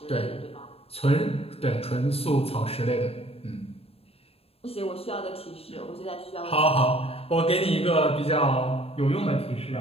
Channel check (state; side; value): late; right; 0.28 ms